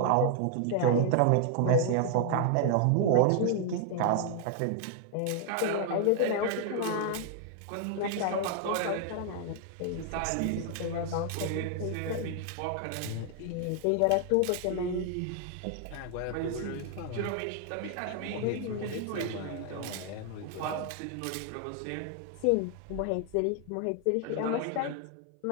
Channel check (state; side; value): different; both; correlation 0.00